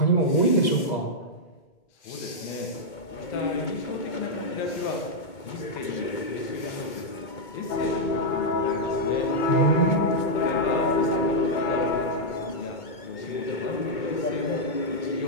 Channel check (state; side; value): late; right; 2.2 ms